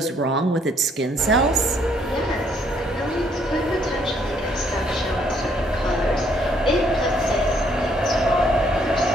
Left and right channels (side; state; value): both; normal; correlation 0.68